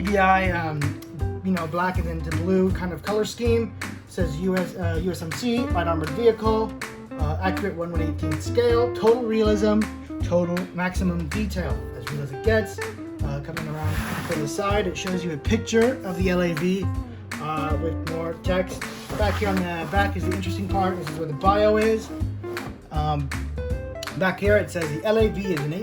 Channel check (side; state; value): both; identical; correlation 1.00